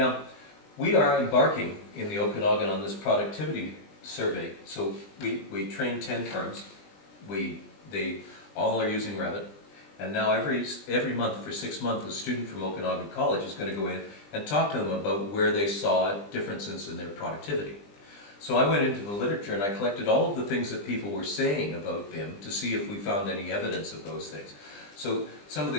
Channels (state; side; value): late; right; 20 ms